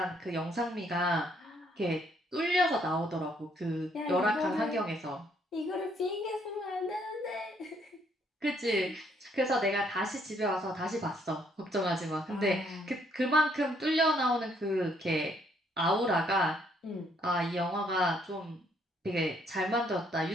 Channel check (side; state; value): both; normal; correlation 0.69